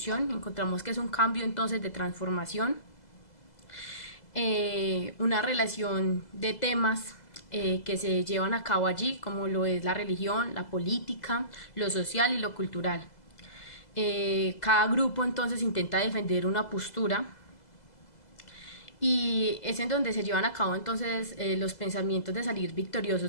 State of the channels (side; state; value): right; late; 2.0 ms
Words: Encontramos que es un cambio entonces de transformación, una relación de temas que se llevan a cabo allí, como lo es la religión, la política, lo social y lo cultural. Cada grupo entonces intenta defender una postura y es en donde se llevan a cabo entonces los pensamientos de salir